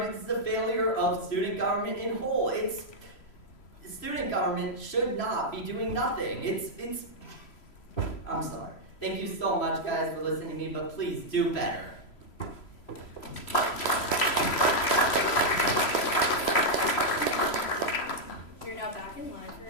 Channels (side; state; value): right; late; 3.0 ms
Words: this is a failure of student government in whole. Student government should not be doing nothing. I'm sorry. Thank you so much, guys, for listening to me, but please do better. You're now back in line for